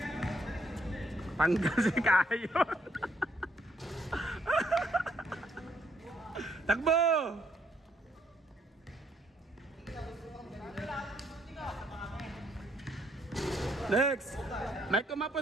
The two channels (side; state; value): both; normal; correlation 0.71